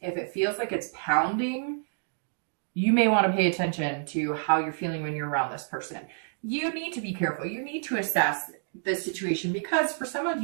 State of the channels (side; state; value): left; silent; digital silence